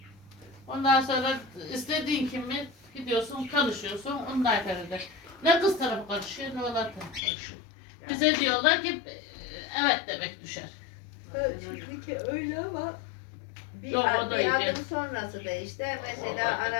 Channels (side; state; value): right; drops out; at 7.2 s